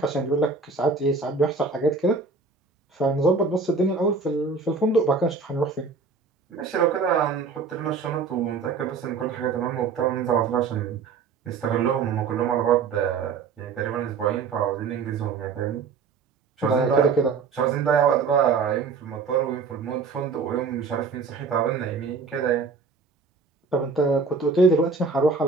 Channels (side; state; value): left; quieter; 4.9 dB